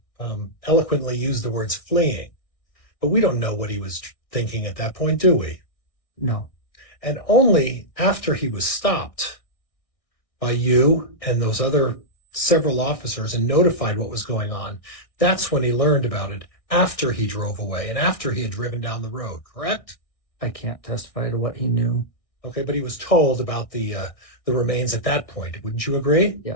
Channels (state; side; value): late; right; 1.6 ms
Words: eloquently used the words fleeing, but we don't know what he was thinking at that point, do we? No. And only after he was stopped by you and those other several officers and notified what was going on, that's when he learned about it, after he drove away and after he had driven down the road, correct? I can't testify to what he knew. Okay, but he was told about the remains at that point. Wouldn't you agree?